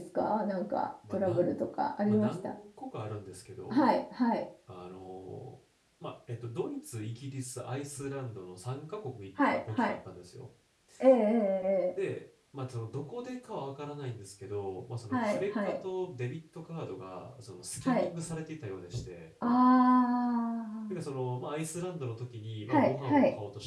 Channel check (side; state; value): both; identical; correlation 1.00